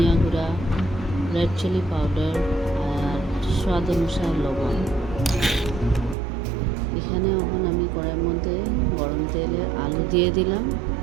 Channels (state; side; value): drops out; left; at 6.2 s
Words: গুঁড়া, রেড চিলি পাউডার আর স্বাদ অনুসারে লবণ। এখানে এখন আমি কড়াইয়ের মধ্যে গরম তেলে আলু দিয়ে দিলাম।